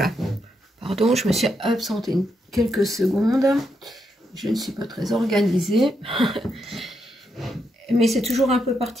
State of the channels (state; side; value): normal; both; correlation 0.81